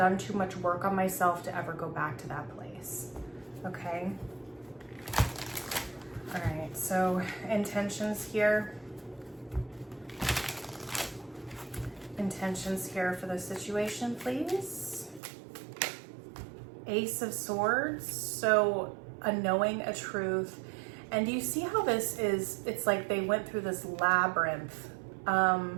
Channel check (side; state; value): left; drops out; at 15.2 s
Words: too much work on myself to ever go back to that place. Okay. All right. So intentions here. Intentions here for the situation, please. Ace of Swords. So a knowing, a truth. And do you see how this is? It's like they went through this labyrinth.